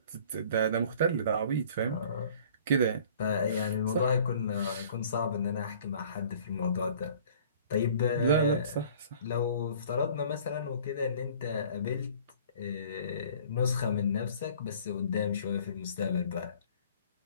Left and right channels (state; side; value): inverted; both; correlation -0.51